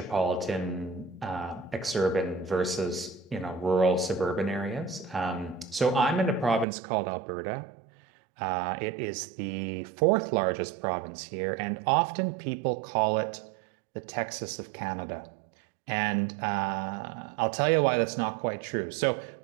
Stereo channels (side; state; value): left; drops out; at 6.7 s